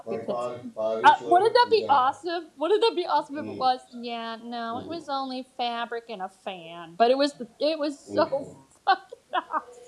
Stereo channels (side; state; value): both; identical; correlation 1.00